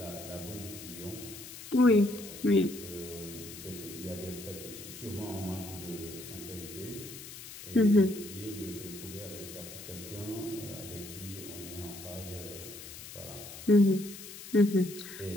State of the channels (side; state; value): left; noise; hiss, 13 dB below the sound